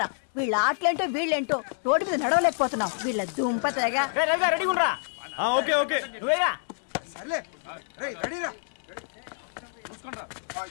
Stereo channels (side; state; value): right; silent; 58 dB below the other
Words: వీళ్ళ ఆటలేంటో వీళ్ళేంటో రోడ్డు మీద నడవలేకపోతున్నాం. వీళ్ళ దుంప తెగ.